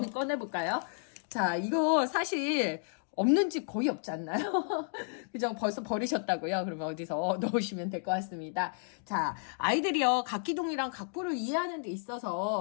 꺼내볼까요? 자, 이거 사실 없는 집 거의 없지 않나요? 그죠? 벌써 버리셨다고요? 그러면 어디서 넣으시면 될 것 같습니다. 자, 아이들이요, 각기둥이랑 각부를 이해하는 데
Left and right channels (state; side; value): silent; right; digital silence